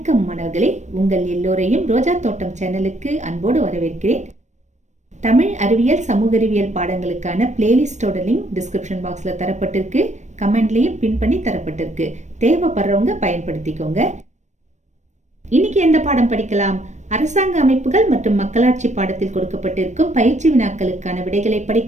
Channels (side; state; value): left; late; 0.34 ms